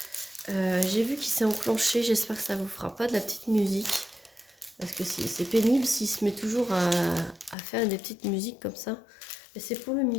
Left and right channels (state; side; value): drops out; right; at 7.6 s